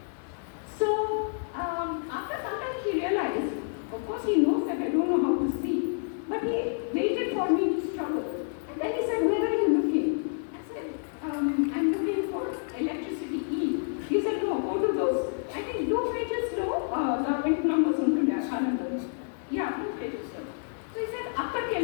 So, after some time he realized, of course he knows that I don't know how to see, but he waited for me to struggle. And then he said, where are you looking? I said, I'm looking for electricity E. He said, no, go to those, I think blue pages లో గవర్నమెంట్ నంబర్స్ ఉంటుండే ఆ కాలంలో. Yeah, blue pages. So he said, అక్కడికి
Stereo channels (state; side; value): silent; right; 59 dB below the other